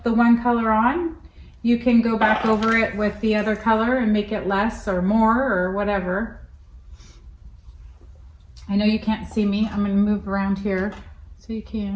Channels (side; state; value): both; identical; correlation 1.00